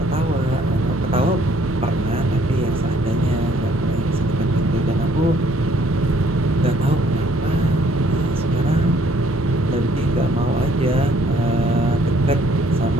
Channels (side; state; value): both; normal; correlation 0.63